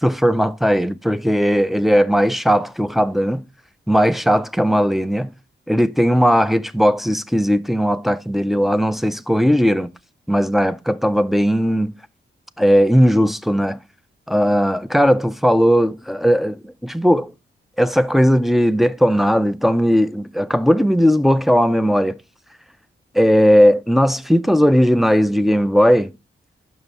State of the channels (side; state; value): both; normal; correlation 0.97